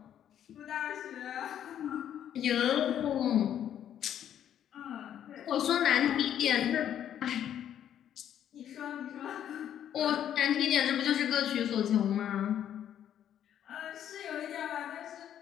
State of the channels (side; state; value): right; quieter; 10.1 dB